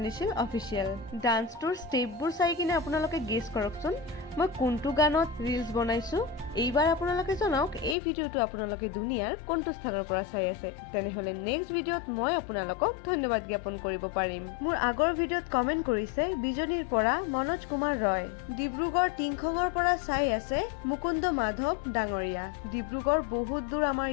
অফিচিয়েল। ডান্সটোৰ ষ্টেপবোৰ চাই কিনে আপোনালোকে গেছ কৰকচোন মই কোনটো গানত ৰিলছ বনাইছো। এইবাৰ আপোনালোকে জনাওক এই ভিডিঅ'টো আপোনালোকে দুনিয়াৰ কোনটো স্থানৰ পৰা চাই আছে। তেনেহলে নেক্সট ভিডিঅ'ত মই আপোনালোকক ধন্যবাদ জ্ঞাপন কৰিব পাৰিম। মোৰ আগৰ ভিডিঅ'ত কমেণ্ট কৰিছে বিজনীৰ পৰা মনোজ কুমাৰ ৰয়। ডিব্ৰুগড় টিংখঙৰ পৰা চাই আছে মুকুন্দ মাধৱ ডাঙৰীয়া। ডিব্ৰুগড় বহুত দূৰ আমাৰ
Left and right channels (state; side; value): drops out; right; at 8.0 s